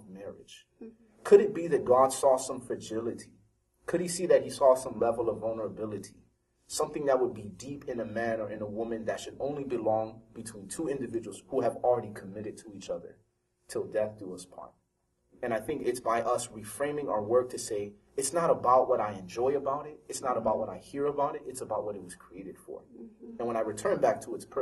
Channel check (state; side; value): identical; both; correlation 1.00